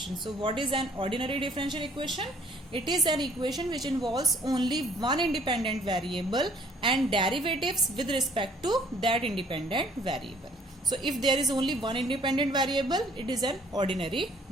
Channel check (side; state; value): both; normal; correlation 0.59